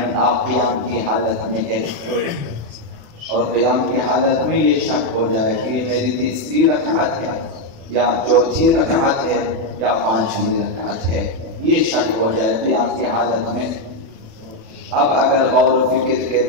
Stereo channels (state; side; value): late; left; 36 ms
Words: آپ قیام کی حالت میں ہے اور قیام کی حالت میں یہ شک ہو جائے کہ یہ میری تیسری رکعت ہے یا چوتھی رکعت ہے یا 5ویں رکعت ہے، یہ شک ہو جائے قیام کی حالت میں، اب اگر غور و فکر کے